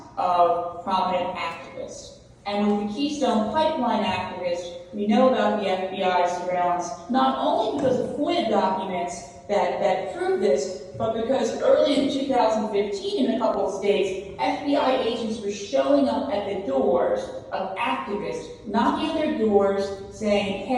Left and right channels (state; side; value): identical; both; correlation 1.00